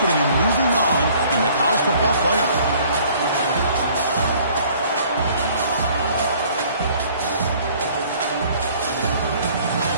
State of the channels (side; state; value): both; inverted; correlation -0.55